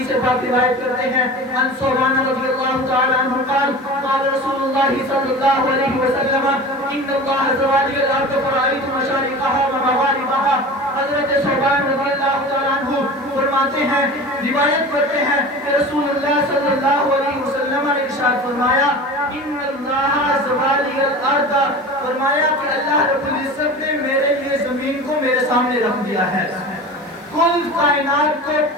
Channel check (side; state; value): both; normal; correlation 0.34